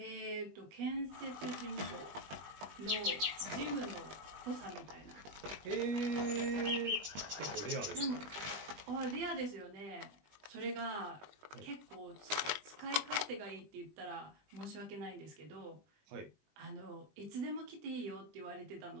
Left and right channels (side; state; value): left; late; 20 ms